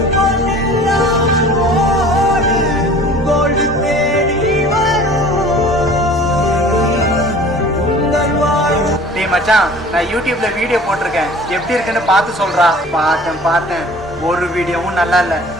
பொன்னெல்லாம் ஓடு, கோல்டு தேடி வரும் உங்கள் வாழ்வு. டேய் மச்சான், நான் யூடியூப்ல வீடியோ போட்டிருக்கேன், எப்படி இருக்குன்னு பார்த்து சொல்றா. பார்த்தேன், ஒரு வீடியோவும் நல்லா இல்ல.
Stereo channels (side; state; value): both; normal; correlation 0.46